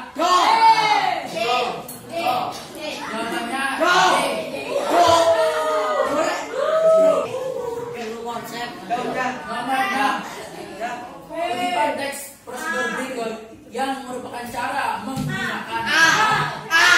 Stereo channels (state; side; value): identical; both; correlation 1.00